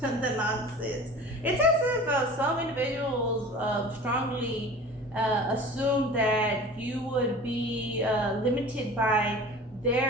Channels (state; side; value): normal; both; correlation 0.40